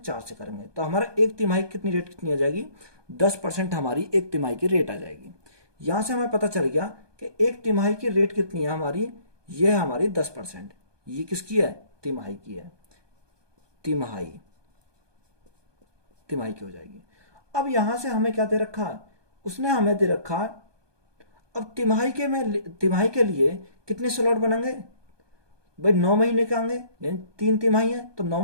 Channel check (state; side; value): late; left; 1.2 ms